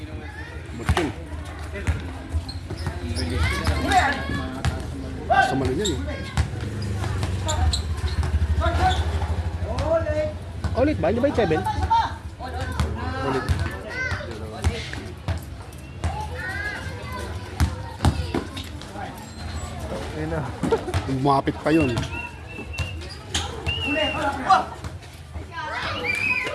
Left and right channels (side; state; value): both; identical; correlation 1.00